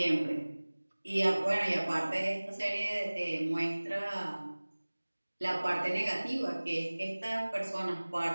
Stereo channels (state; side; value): inverted; both; correlation -1.00